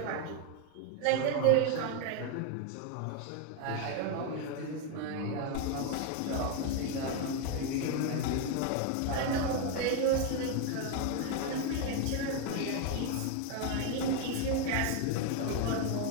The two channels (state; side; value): different; both; correlation 0.01